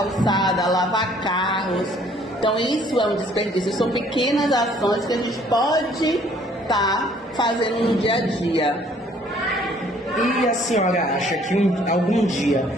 lavar carros. Então isso é um desperdício. São pequenas ações que a gente pode estar fazendo no dia a dia. E a senhora acha que algum dia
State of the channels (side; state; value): both; normal; correlation 0.60